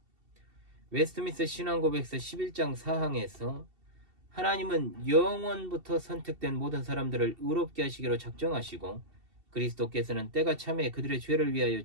웨스트민스터 신앙고백서 11장 4항에서 하나님은 영원부터 선택된 모든 사람들을 의롭게 하시기로 작정하시고 그리스도께서는 때가 참에 그들의 죄를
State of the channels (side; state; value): left; late; 2.7 ms